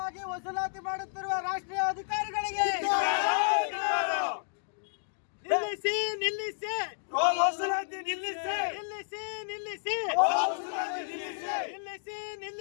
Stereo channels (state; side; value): silent; right; digital silence